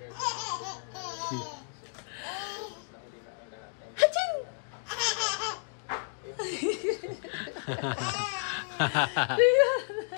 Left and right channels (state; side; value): silent; right; digital silence